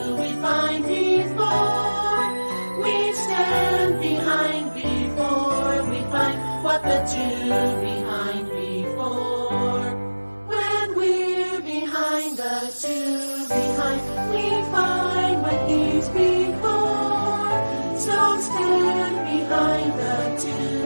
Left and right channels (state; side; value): inverted; both; correlation -1.00